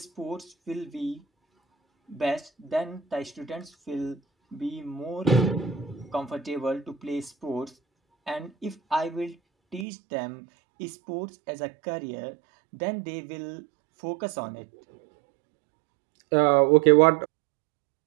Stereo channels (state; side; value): drops out; left; at 9.9 s